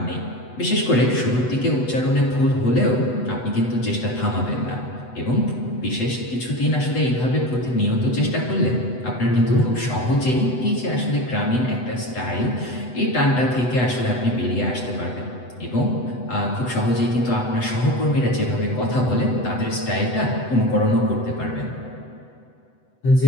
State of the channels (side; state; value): right; late; 8.0 ms